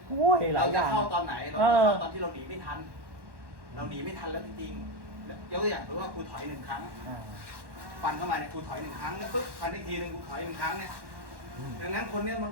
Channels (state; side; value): late; left; 1.1 ms